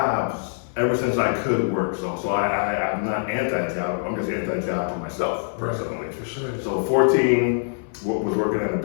ever since I could work. So I'm not anti-job. I'm just anti-job for myself, personally. For sure. So 14, was working at a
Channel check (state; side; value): silent; right; 60 dB below the other